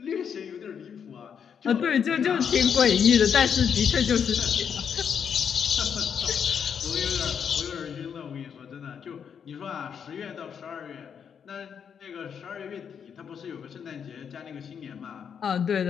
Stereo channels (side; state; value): right; quieter; 7.4 dB